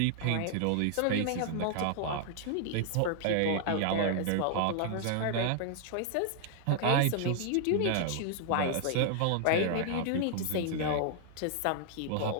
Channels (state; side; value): different; both; correlation 0.00